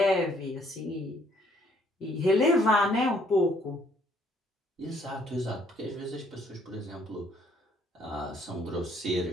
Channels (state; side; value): normal; both; correlation 0.65